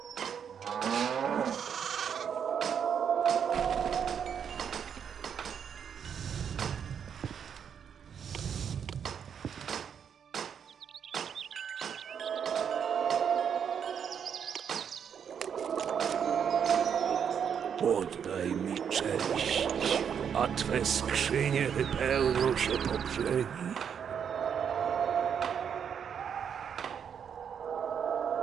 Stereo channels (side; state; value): left; quieter; 7.7 dB